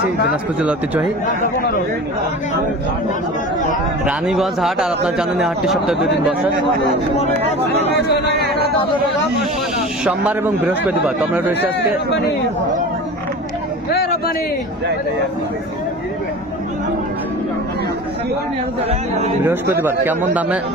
দিনাজপুর জেলা ঐতিহ্যবাহী রানীগঞ্জ হাট। আর আপনার জানেন এই হাটটি সপ্তাহে 2 দিন বসে, সোমবার এবং বৃহস্পতিবার। তো আমরা রয়েছে আজকে বৃহস্পতিবার। কেমন দামে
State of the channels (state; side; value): normal; both; correlation 0.35